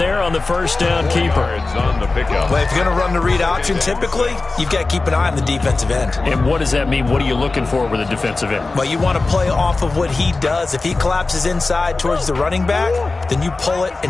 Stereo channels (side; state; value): right; quieter; 3.5 dB